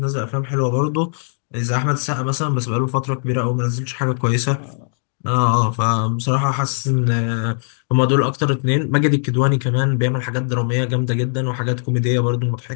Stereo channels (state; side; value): silent; right; digital silence